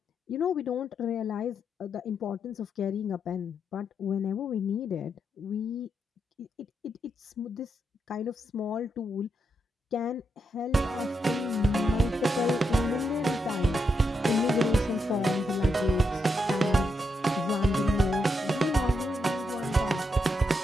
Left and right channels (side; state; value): both; normal; correlation 0.82